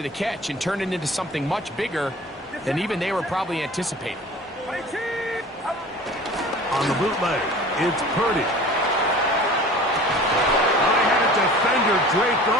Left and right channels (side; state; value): both; normal; correlation 0.42